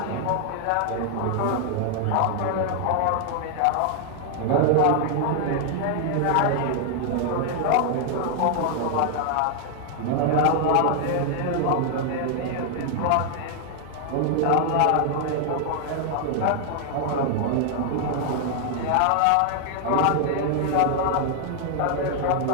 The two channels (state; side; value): different; both; correlation 0.00